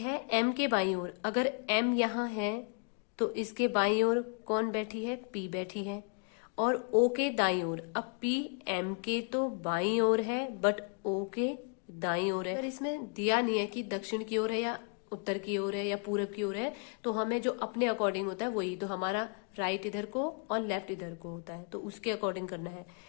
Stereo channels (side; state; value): right; quieter; 40.0 dB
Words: एम के बाईं ओर, अगर एम यहां है तो इसके बाईं ओर कौन बैठी है? पी बैठी है। और ओ के दाईं ओर, अब पी एम के तो बाईं ओर है बट ओ के दाईं ओर है। पर इसमें दिया नहीं है कि दक्षिण की ओर है या उत्तर की ओर है या पूरब की ओर है, तो हमें जो अपने अकॉर्डिंग होता है वही, तो हमारा राइट इधर को और लेफ्ट इधर को होता है, तो उसके अकॉर्डिंग करना है।